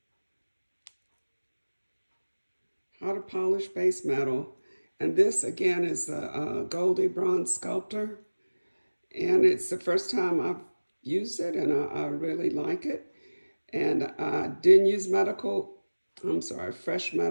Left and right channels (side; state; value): both; inverted; correlation -1.00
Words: How to polish base metal. And this again is the Goldie Bronze Sculptor. And it's the first time I've used it, and I really like it. And I didn't use fresh